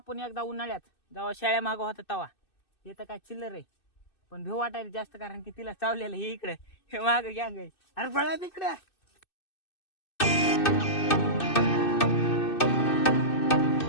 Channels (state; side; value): late; right; 2.6 ms